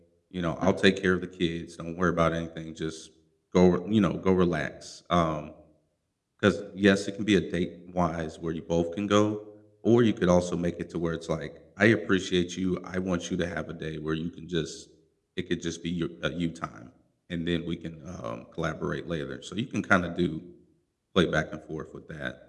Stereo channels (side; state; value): both; identical; correlation 1.00